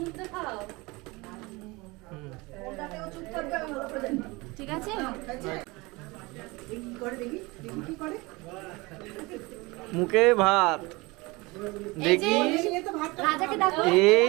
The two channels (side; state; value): left; quieter; 23.9 dB